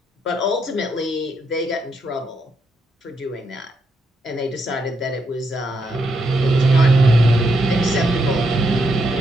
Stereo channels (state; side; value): normal; both; correlation 0.79